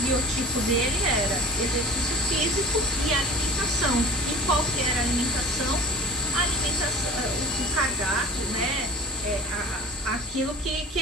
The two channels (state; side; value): normal; both; correlation 0.42